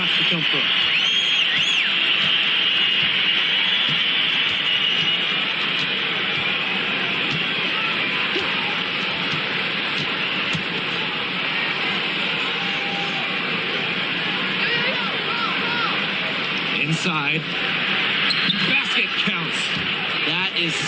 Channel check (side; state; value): both; identical; correlation 1.00